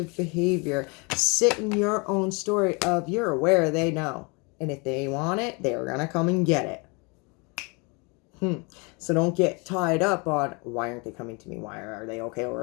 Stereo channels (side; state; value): right; quieter; 30.3 dB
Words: behavior. Sit in your own story of, you're aware, they know. And if they want it, they're going to come and get it. So don't get tied up on, why aren't they coming to me? Why are they okay?